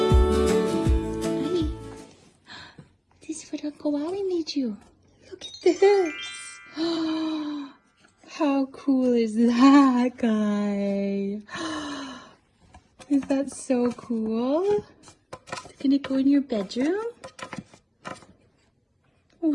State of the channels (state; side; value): identical; both; correlation 1.00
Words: This is what Uncle Wally made you. Look at this. How cool is that, guy? Is that so cool? It's gonna go in your bedroom?